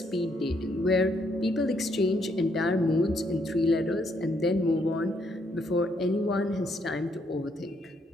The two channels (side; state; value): both; normal; correlation 0.73